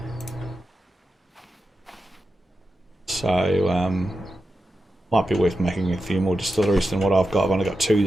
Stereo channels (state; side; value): normal; both; correlation 0.90